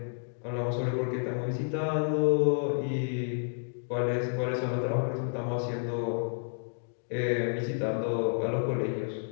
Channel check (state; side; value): silent; right; digital silence